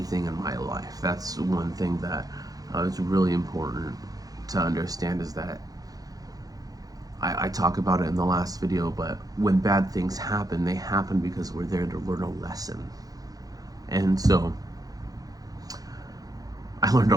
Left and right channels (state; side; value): late; left; 0.18 ms